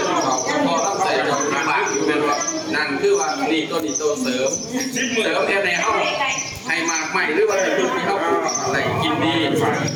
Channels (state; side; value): identical; both; correlation 1.00